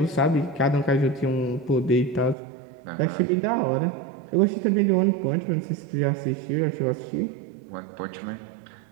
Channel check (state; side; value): drops out; left; at 2.4 s